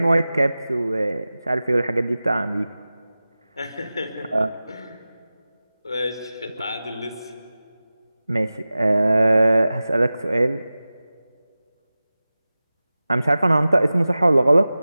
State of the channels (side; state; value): both; inverted; correlation -0.96